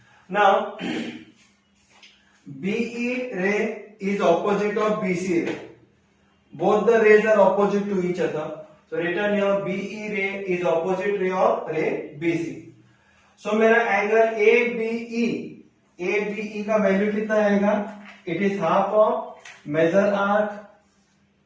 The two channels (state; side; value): identical; both; correlation 1.00